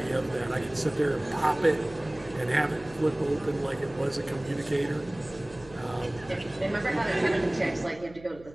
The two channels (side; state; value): right; noise; hum, 20 dB below the sound